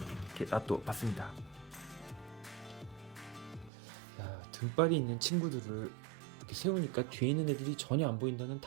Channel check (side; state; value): left; drops out; at 3.7 s